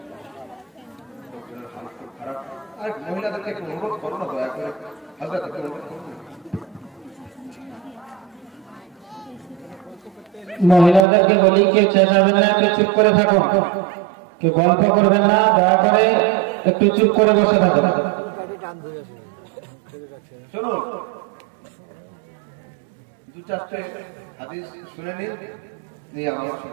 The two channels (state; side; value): drops out; left; at 11.1 s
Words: খারাপ। আর মহিলাদেরকে একটু অনুরোধ করো না, দয়া করে হযরত অনুরোধ করো। মহিলাদেরকে বলি কেউ চেঁচাবেন না, একটু চুপ করে থাকুন, কেউ গল্প করবেন না, দয়া করে একটু চুপ করে বসে থাকুন। শুনুন, 2-4টে হাদিস শুনে নিন, নিয়ে আমার